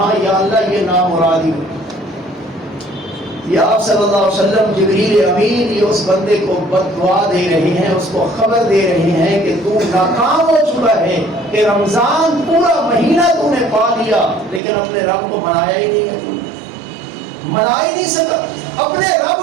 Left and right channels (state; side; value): drops out; left; at 14.6 s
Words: یا اللہ یہ نامرادی ہو۔ یا آپ صلی اللہ علیہ وسلم جبریل امین یہ اس بندے کو بد دعا دے رہے ہیں، اس کو خبر دے رہے ہیں کہ تو ناکام ہو چکا ہے، کہ رمضان پورا مہینہ تو نے پا لیا لیکن اپنے رب کو منایا ہی نہیں ہے، منا ہی نہیں سکا اپنے رب